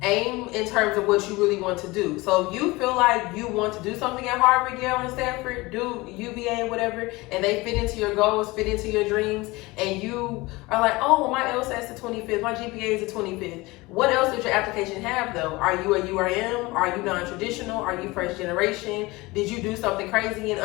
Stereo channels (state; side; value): quieter; right; 22.1 dB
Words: aim in terms of what you really want to do. So if you feel like you want to do something at Harvard, Yale, and Stanford, do UVA, whatever, and they fit into your goals, fit into your dreams, and you are like, oh, well, my LSAT's the 25th, my GPA is the 25th. What else does your application have, though? Are you a URM? Are you non-traditional? Are you first generation? Did you do something crazy in